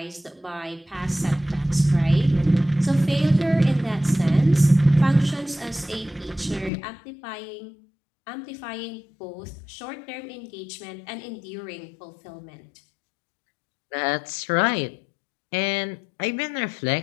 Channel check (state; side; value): drops out; right; at 6.7 s